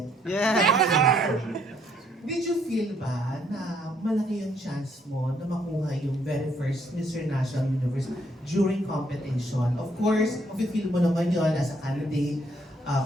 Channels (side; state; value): both; normal; correlation 0.69